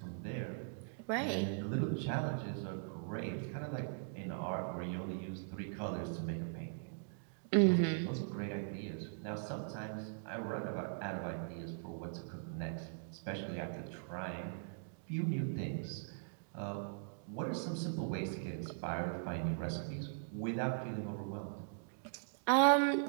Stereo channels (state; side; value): silent; left; digital silence